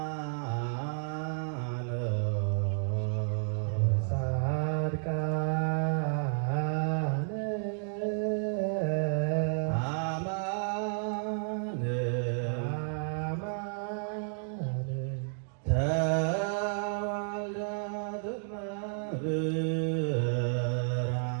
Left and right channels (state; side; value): silent; left; digital silence